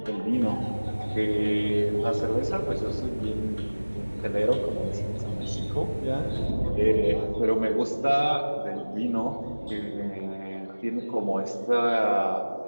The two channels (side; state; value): both; inverted; correlation -1.00